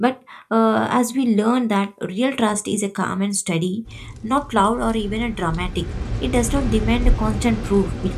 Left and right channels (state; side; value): identical; both; correlation 1.00